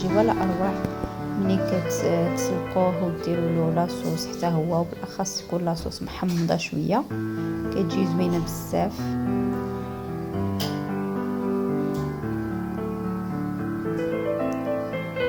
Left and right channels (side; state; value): both; identical; correlation 1.00